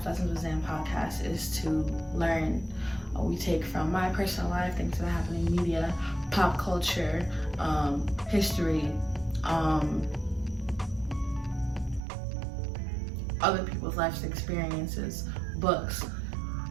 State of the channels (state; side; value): drops out; left; at 12.0 s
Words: Lessons with Zan podcast is to learn. We take from my personal life, things that happen in media, pop culture, history, other people's life experiences, books,